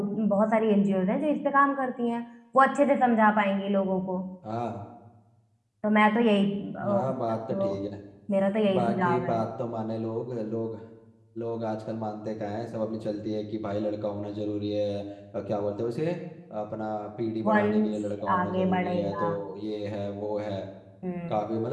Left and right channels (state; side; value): identical; both; correlation 1.00